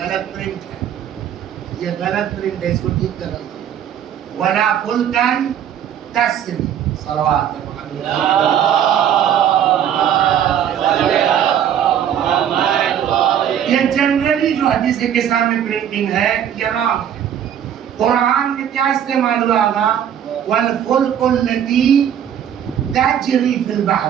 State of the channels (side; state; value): left; quieter; 9.5 dB